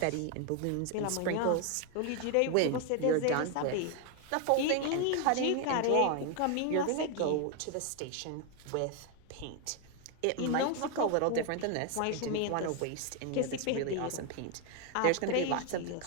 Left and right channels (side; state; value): both; different; correlation 0.01